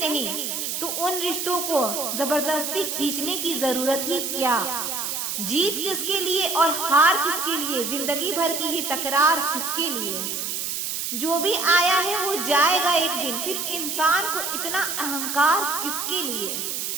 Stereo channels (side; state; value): right; noise; hiss, 3 dB below the sound